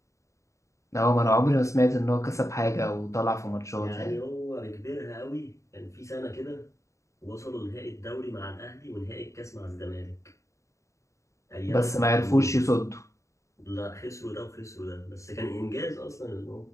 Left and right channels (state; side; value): late; right; 0.15 ms